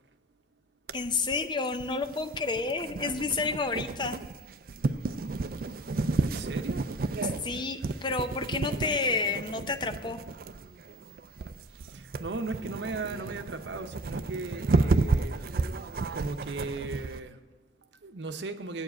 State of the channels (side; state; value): both; normal; correlation 0.45